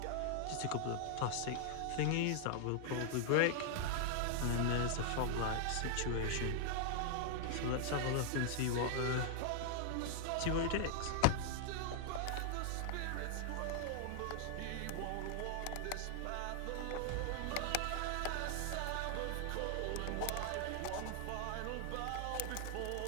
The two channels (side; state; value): both; different; correlation 0.00